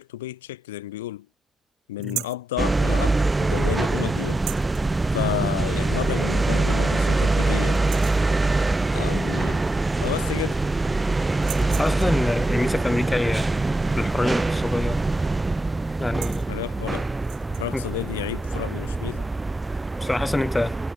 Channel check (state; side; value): normal; both; correlation 0.86